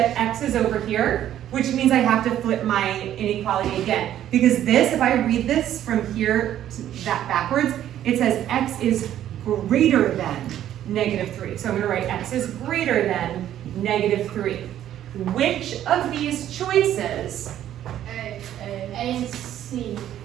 x is over here, which means I have to flip my inequality again. Because this, if I read this from here to that backwards, it says x is greater than negative 3. So I'm going to write x is greater than negative 3. Which of these choices? A and C.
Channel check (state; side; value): quieter; left; 11.6 dB